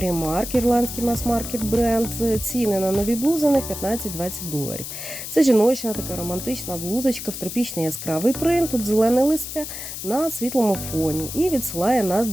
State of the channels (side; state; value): left; noise; hiss, 8 dB below the sound